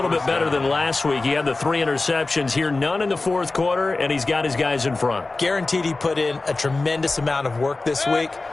bit better than last week. He had the 3 interceptions here, none in the fourth quarter, and he's got his guys in front. Guaranteed he put in a tremendous amount of work this week,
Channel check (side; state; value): right; quieter; 3.4 dB